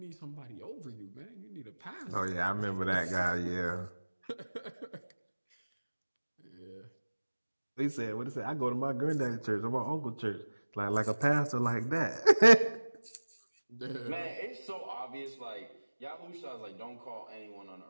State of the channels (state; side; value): inverted; both; correlation -1.00